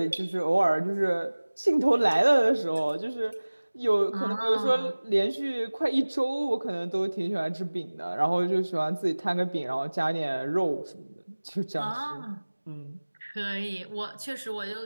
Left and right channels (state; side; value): inverted; both; correlation -1.00